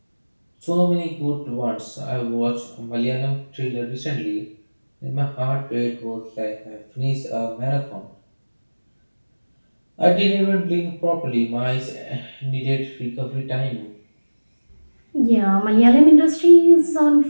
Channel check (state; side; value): inverted; both; correlation -1.00